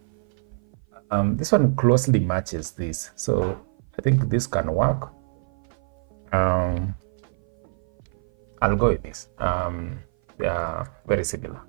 This one closely matches this, so I think this can work. I'll go with this. They are very similar.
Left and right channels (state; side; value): silent; left; 55 dB below the other